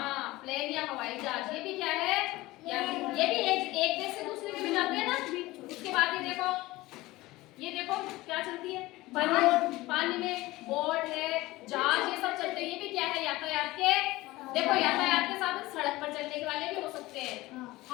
प्लेन या हवाई जहाज। ये भी क्या है? ये भी एक देश से दूसरे में जाते हैं ना। उसके बाद ये देखो क्या चलती है? पानी में बोट है, जहाज, ये सब चलते हैं। ये भी क्या है? यातायात के। देखो यातायात के साधन सड़क पर चलने वाले भी हो सकते हैं,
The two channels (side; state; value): right; quieter; 19.1 dB